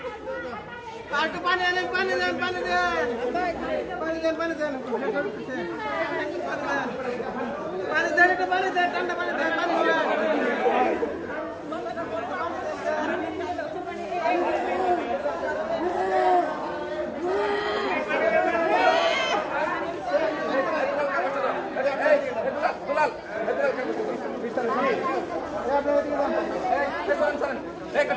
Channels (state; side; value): identical; both; correlation 1.00